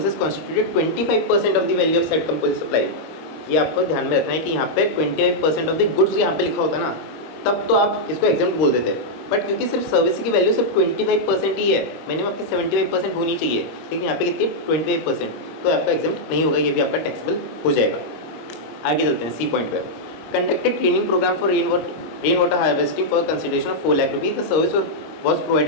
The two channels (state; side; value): late; right; 25 ms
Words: constituted 25% of the value of set composite supply, ये आपको ध्यान में रखना है कि यहाँ पे 25% ऑफ द गुड्स यहाँ पे लिखा होता ना, तब तो आप इसको एग्जाम्प्ट बोल देते। बट क्योंकि सिर्फ सर्विस की वैल्यू सिर्फ 25% ही है, मिनिमम आपकी 75% होनी चाहिए, लेकिन यहाँ पे कितनी 25%, तो आपका एग्जाम्प्ट नहीं होगा, ये भी आपका टैक्सेबल हो जाएगा। आगे चलते हैं सी पॉइंट पे। Conducted training program for rain water harvesting for consideration of 4 lakh rupees, the service was